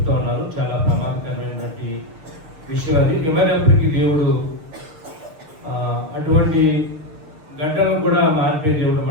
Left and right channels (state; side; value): late; left; 6.6 ms